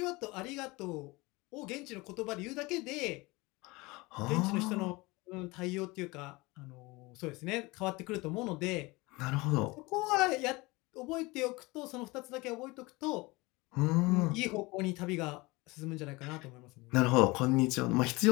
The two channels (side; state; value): right; quieter; 23.4 dB